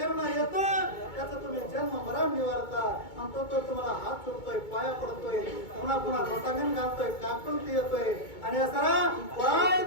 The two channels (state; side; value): late; right; 2.2 ms